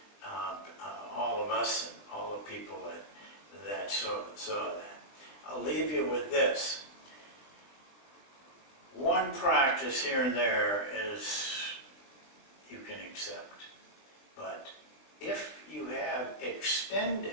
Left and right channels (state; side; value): late; right; 20 ms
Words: all of us and all the people that saw that. I'll leave you with this. One practice here and there is you can accept, but if you have